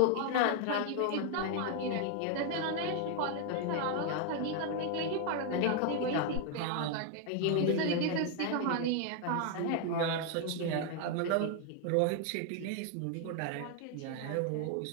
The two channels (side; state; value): both; different; correlation 0.00